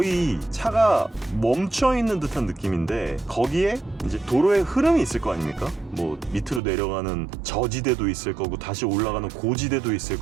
차가 멈춰있는 듯한 느낌인데, 거기에 이제 도로에 흐름이 있을 거 아닙니까? 뭐 밑으로 내려가는 저지대도 있을 거고, 다시 올라가는 고지대도 있을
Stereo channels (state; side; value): drops out; left; at 6.6 s